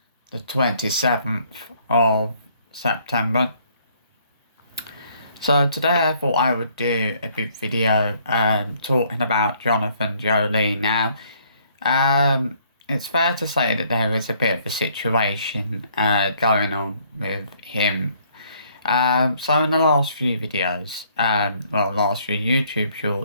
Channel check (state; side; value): inverted; both; correlation -0.64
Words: the 27th of September. So today I thought I would do a big video, talking about Jonathan Joly. Now, it's fair to say that there is a bit of a situation, going on with him. So in the last few videos, last few YouTube